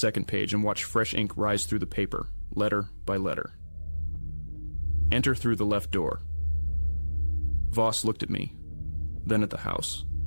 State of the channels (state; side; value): inverted; both; correlation -1.00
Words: page and watched fresh ink rise through the paper, letter by letter. Enter through the left door. Voss looked at me, then at the house,